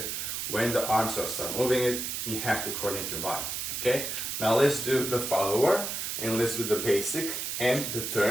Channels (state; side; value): noise; right; hiss, 3 dB below the sound